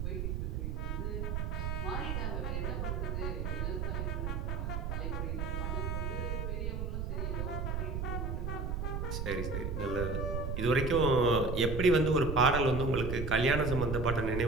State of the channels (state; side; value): noise; right; rumble, 2 dB below the sound